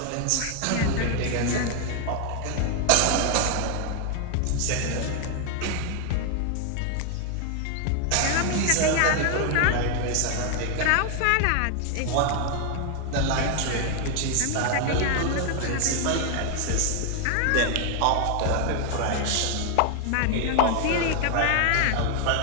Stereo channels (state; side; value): different; both; correlation 0.00